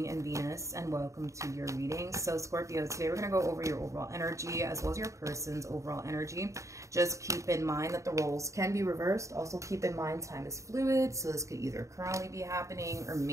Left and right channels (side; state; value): left; late; 0.15 ms